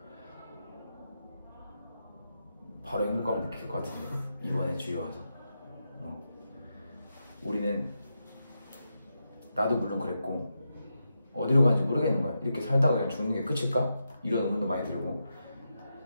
바로 행복감을 느낄 것 같은데 이번에 주위 와서 우리는 나도 물론 그랬고 어디로 가는지 모르겠는 거야. 이렇게 살다가 그냥 죽는 게 끝일까? 이런 의문도 많이 들고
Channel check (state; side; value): inverted; both; correlation -0.86